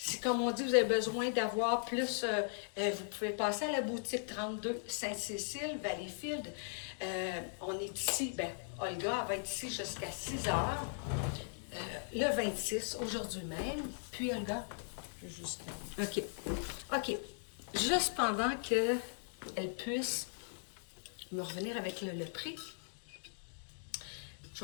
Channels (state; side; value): silent; right; digital silence